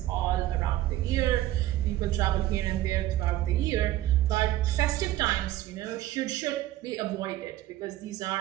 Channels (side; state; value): left; quieter; 14.7 dB